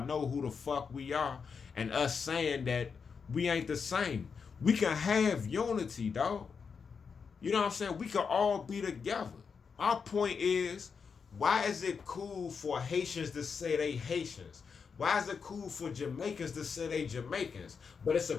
know who the fuck we are, and us saying that we ain't the same. We can have unity, dog. You know what I'm saying? We can all be together. Our point is, why is it cool for Haitians to say they Haitians? Why is it cool for Jamaicans to say they Jamaicans? But it's a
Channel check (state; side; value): quieter; right; 5.8 dB